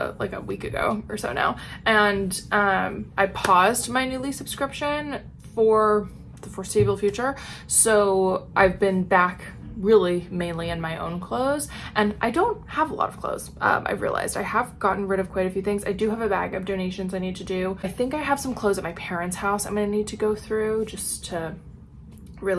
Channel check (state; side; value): identical; both; correlation 1.00